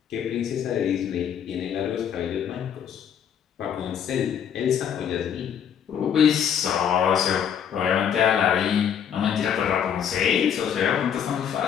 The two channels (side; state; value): right; quieter; 8.5 dB